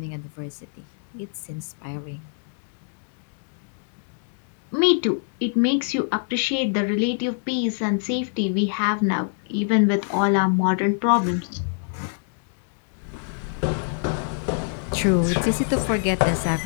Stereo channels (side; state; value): right; silent; digital silence